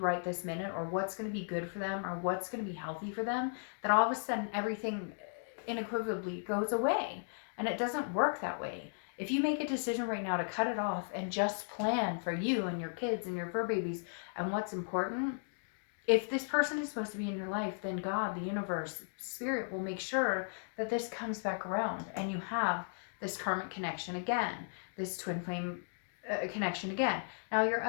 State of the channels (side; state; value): right; silent; digital silence